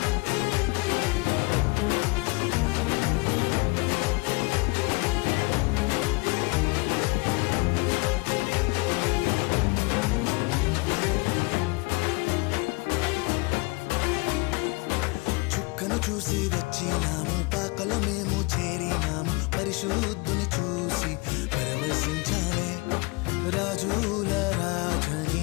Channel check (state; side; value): quieter; right; 26.8 dB